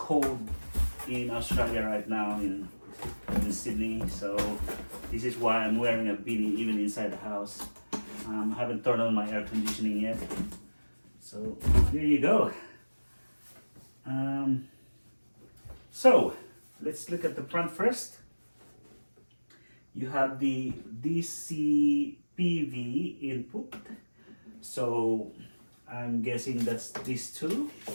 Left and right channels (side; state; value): both; inverted; correlation -1.00